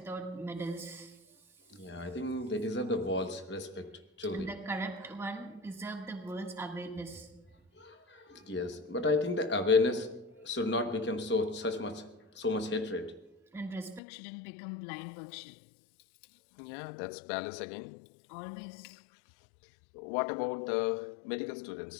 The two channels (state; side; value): drops out; right; at 14.0 s